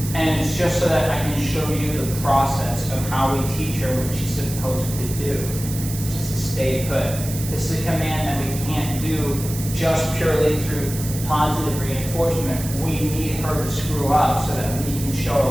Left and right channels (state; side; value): noise; right; hiss, 10 dB below the sound